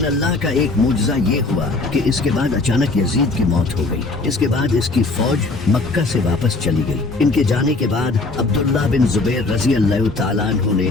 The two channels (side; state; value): right; quieter; 3.4 dB